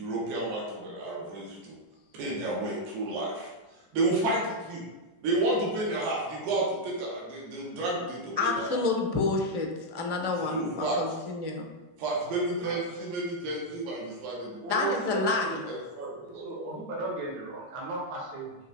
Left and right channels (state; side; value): late; left; 16 ms